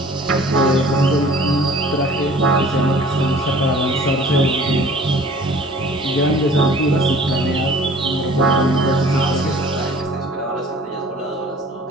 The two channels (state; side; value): normal; both; correlation 0.49